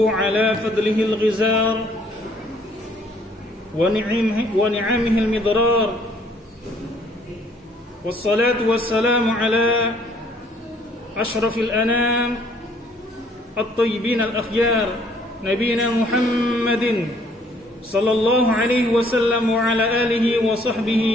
على فضله الغزار ونعمه المضرار والصلاة والسلام على أشرف الأنام الطيبين الأخيار نبينا محمد صلى الله عليه وسلم وعلى آله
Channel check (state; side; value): normal; both; correlation 0.62